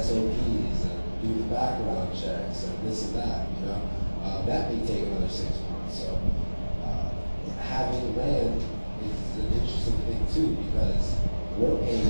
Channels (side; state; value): both; inverted; correlation -1.00